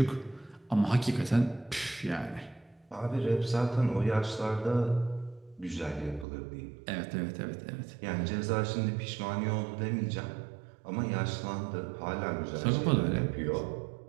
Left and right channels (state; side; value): drops out; left; at 6.2 s